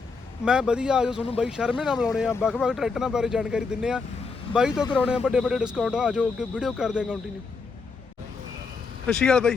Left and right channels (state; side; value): quieter; right; 4.6 dB